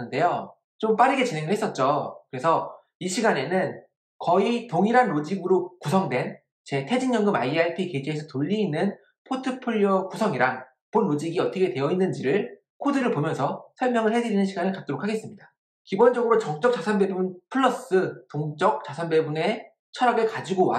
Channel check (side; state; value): both; identical; correlation 1.00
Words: 좀 빠르게 진행을 했었죠. 그래서 이 시간에는 거의 동일한 로직으로 구성된 제 퇴직연금 IRP 계좌에서 돌리는 포트폴리오 구성이랑 본 로직이 어떻게 되어 있는지를 코드를 보면서 설명을 해드리는 시간을 갖도록 하겠습니다. 기본적으로 정적 자산 배분 플러스 동적 자산 배분의 철학을 가지고